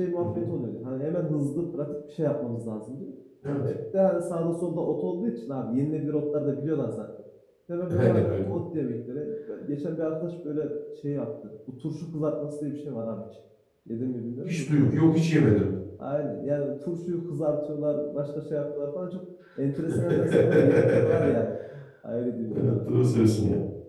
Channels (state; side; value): identical; both; correlation 1.00